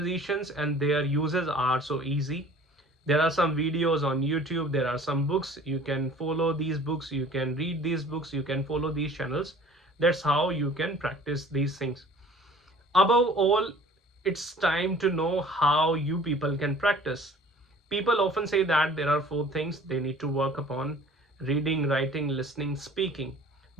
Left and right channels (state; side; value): normal; both; correlation 0.48